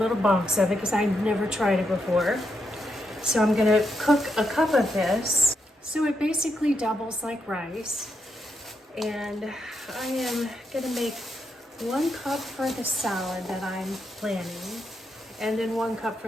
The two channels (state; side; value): normal; both; correlation 0.82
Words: box of it because I never tried it before. So I'm gonna cook a cup of this. So it basically doubles like rice. And I am gonna make 1 cup for the salad that I'm planning, and then 1 cup